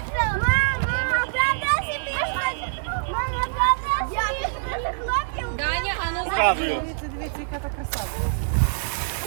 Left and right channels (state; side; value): silent; left; digital silence